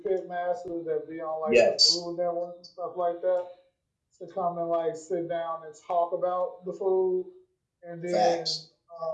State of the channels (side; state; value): both; identical; correlation 1.00